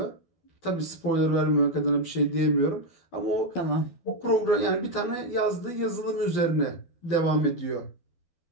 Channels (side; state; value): right; late; 12 ms